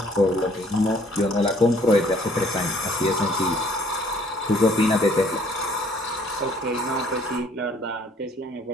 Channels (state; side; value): normal; both; correlation 0.60